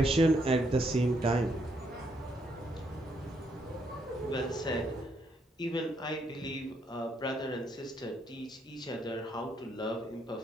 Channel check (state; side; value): normal; both; correlation 0.74